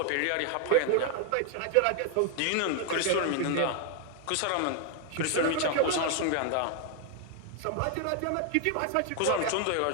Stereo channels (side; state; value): both; different; correlation 0.00